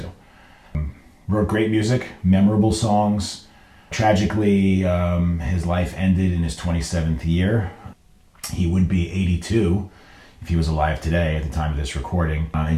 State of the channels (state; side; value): identical; both; correlation 1.00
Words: Wrote great music, memorable songs. Tragically, his life ended in his 27th year. He would be 82 if he was alive today at the time of this recording. And